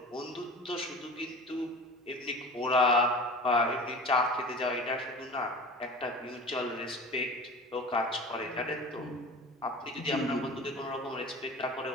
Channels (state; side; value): normal; both; correlation 0.37